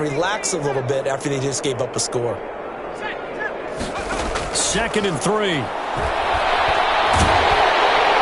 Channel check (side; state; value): both; identical; correlation 1.00